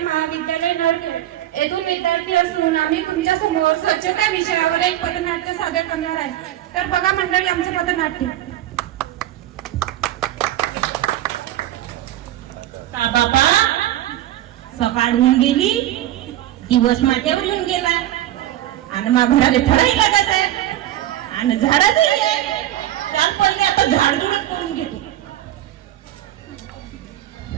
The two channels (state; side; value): quieter; left; 13.4 dB